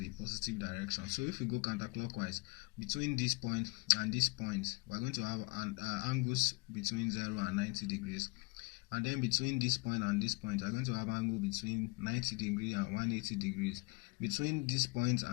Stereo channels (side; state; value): right; quieter; 27.0 dB